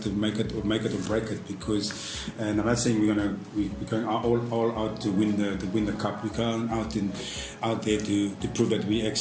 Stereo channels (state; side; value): identical; both; correlation 1.00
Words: to make it or break it, because, and I'm not saying we're going all out to win the cup. We're going out there to prove that we